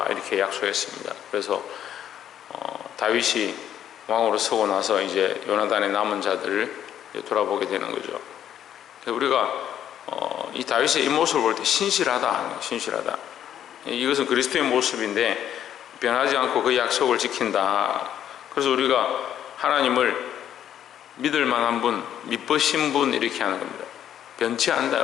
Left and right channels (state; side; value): quieter; right; 10.3 dB